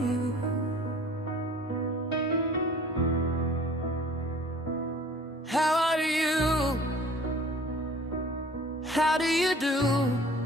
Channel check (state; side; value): normal; both; correlation 0.48